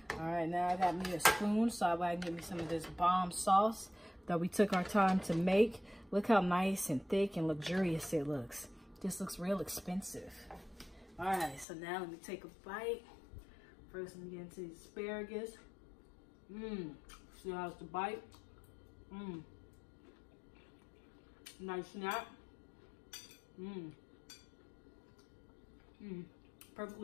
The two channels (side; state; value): right; drops out; at 11.7 s